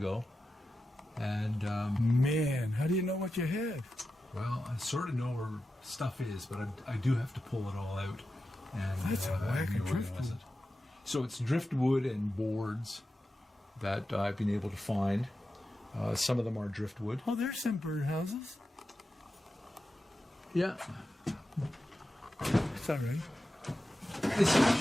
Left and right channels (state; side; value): normal; both; correlation 0.91